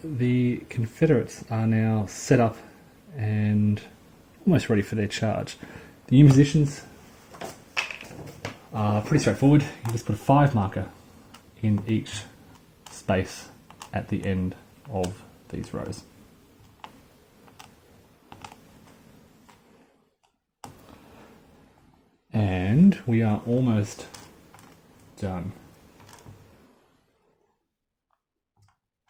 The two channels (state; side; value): identical; both; correlation 1.00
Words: the Confederates are now set up and almost ready for their charge. The Union positions are pretty straightforward. You just put a 5 marker in each space at the end of these rows. And we are almost done.